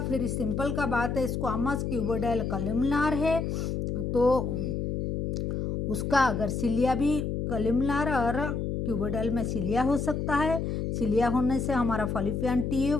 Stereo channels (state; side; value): noise; left; hum, 2 dB below the sound